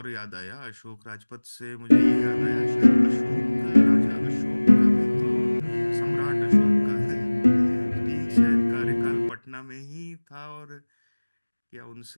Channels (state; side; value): inverted; both; correlation -1.00